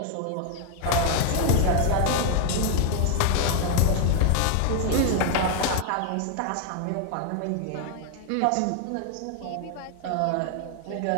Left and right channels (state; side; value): different; both; correlation 0.00